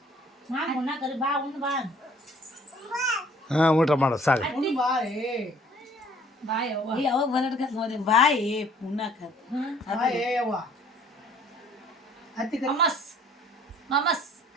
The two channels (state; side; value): normal; both; correlation 0.56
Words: ಮಾಮ ಉಣ್ಣ ಕರಿ ಬಾ ಉಣ್ಣ ಬಾ ಹಾಂ ಊಟ ಮಾಡೋ ಸಾಕು. ಬಾಯ್ ಅವ್ವ ಯಾವಾಗ ಬಂದಡ್ಕ ನೋಡಿ ಬಾಯಿ ಉಣ್ಣಾಕ ಮಮಸ್ ಮಮಸ್